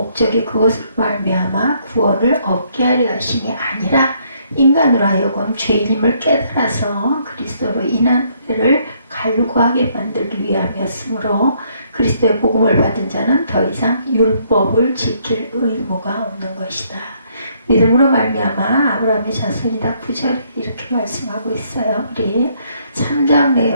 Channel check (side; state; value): both; inverted; correlation -0.69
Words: 그것을 말미암아 구원을 얻게 하려 하심이 아니라 인간으로 하여금 죄인임을 깨달아서 그리스도로 인한 은혜를 갈구하게 만들기 위함이었으므로, 그리스도의 복음을 받은 자는 더 이상 율법을 지킬 의무가 없는 것이다. 믿음으로 말미암아 아브라함의 자손이다. 9절에 이렇게 말씀하고 있어요. 우리 3장